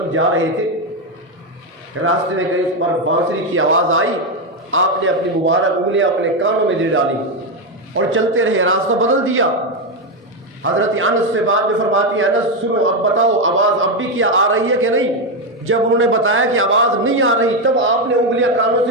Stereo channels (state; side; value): normal; both; correlation 0.07